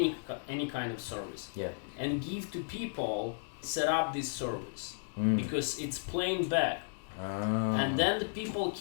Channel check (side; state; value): right; silent; digital silence